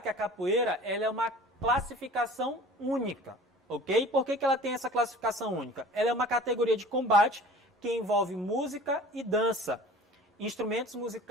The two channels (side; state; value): both; normal; correlation 0.44